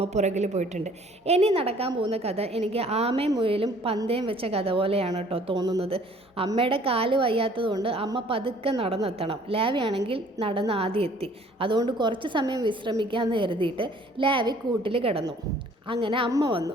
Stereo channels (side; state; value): both; normal; correlation 0.56